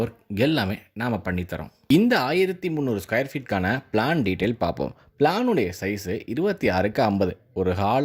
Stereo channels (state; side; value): identical; both; correlation 1.00